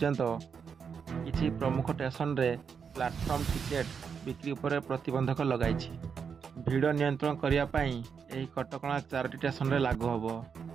किसी प्रमुख स्टेशन रे प्लाटफर्म टिकेट बिक्री पर प्रतिबंधक लगाई। भिड़ नियंत्रण करने यह कटकणा 4टी स्टेशन रे लागू हम।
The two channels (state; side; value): quieter; left; 6.4 dB